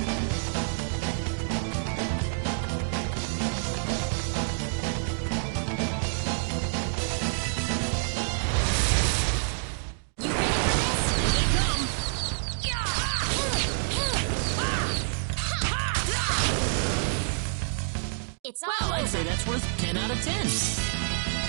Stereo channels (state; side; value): silent; left; digital silence